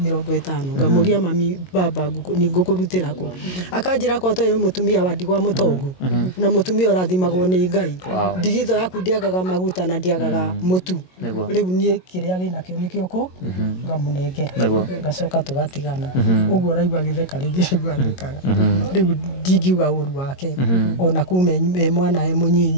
ngamũria mami baba nĩ ngũkũrutĩra kũ akanjĩra ko toyo mũtumia wa ndigwa mũtongu na mũtumia ũrathimagwo nĩ Ngai ndigitho yaku ndiagaga maguta na ndiagaga mũtu rĩu niĩ kĩrĩa wĩnakĩo nĩkĩo kũ ngamũnengera gacoka tũgatigana ũguo raigua gĩtheka rĩngĩ gwathĩkaga rĩu ndingiuga ũru wake ona kuma mwana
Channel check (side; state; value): right; late; 22 ms